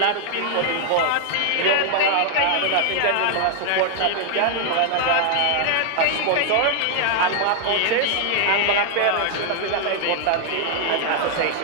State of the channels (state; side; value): different; both; correlation 0.00